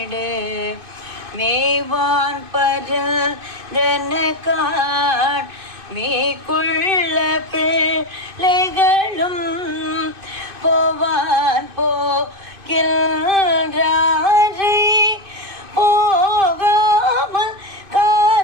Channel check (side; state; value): left; late; 2.5 ms